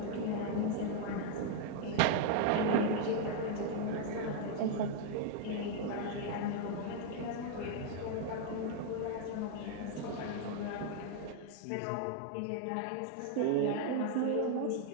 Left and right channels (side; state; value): both; different; correlation 0.00